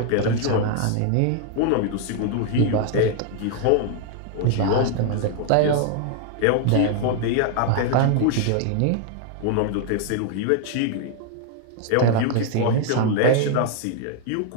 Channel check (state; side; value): different; both; correlation 0.00